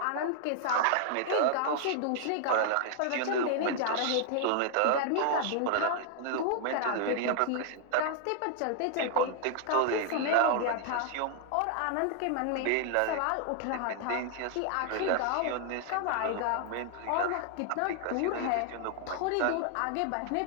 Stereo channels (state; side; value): different; both; correlation 0.00